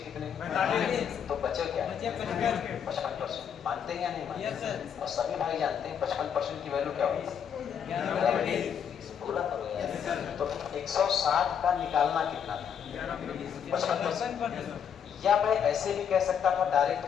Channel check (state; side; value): quieter; right; 8.0 dB